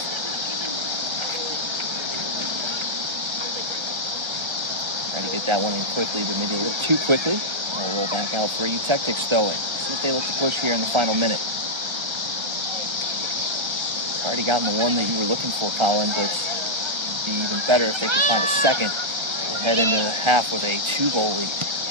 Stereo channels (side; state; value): left; late; 1.3 ms